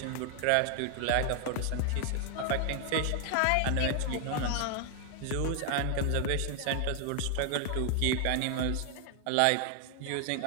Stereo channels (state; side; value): different; both; correlation 0.00